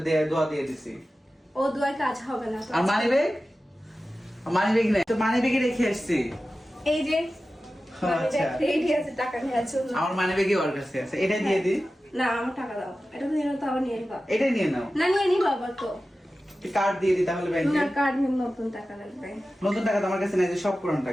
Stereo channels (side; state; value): both; normal; correlation 0.94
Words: দোয়া দিয়ে দিছি। ও দোয়ার কাজ হবে না তো। আর মানিব্যাগ নাই তো, মানিব্যাগে রেখে আসছি। এই যে আচ্ছা, রেডি আছে টাকা নেওয়ার জন্য। আমার মানিব্যাগে ওর কাছে আছে, এটা দিয়ে দি। না আমার টাকা দাও, এটা নিয়ে নাও তো, আবার নিয়ে নিবা। এটা নিয়ে নাও। না নিয়ে নিবা আবার তো। কার্ড দিয়ে দি তাহলে ব্যাংকে। না কার্ড নিয়ে নতুন টাকা লাগবে। নতুন টাকা তো আমার কাছে নাই, যে সব পুরান